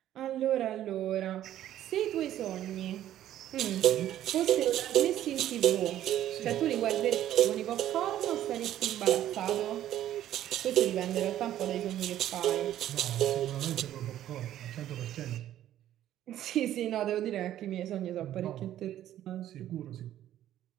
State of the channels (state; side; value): quieter; left; 12.2 dB